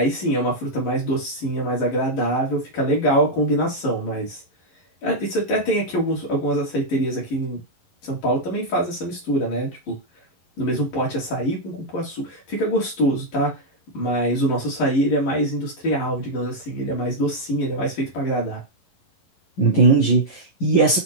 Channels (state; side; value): late; right; 11 ms